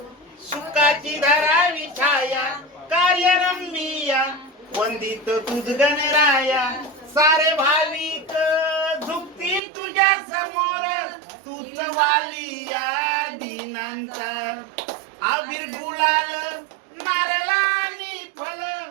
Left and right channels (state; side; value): drops out; left; at 9.6 s